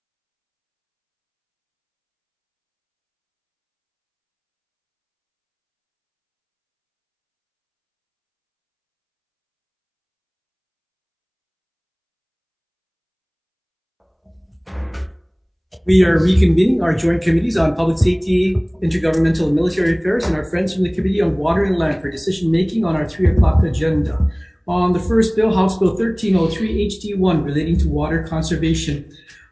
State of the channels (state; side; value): identical; both; correlation 1.00